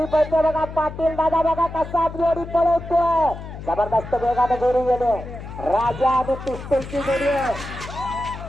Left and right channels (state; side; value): noise; left; hum, 11 dB below the sound